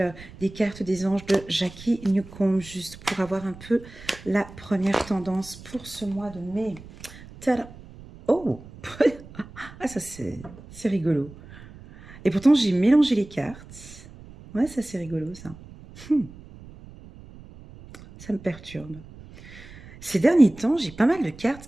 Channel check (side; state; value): right; noise; rumble, 18 dB below the sound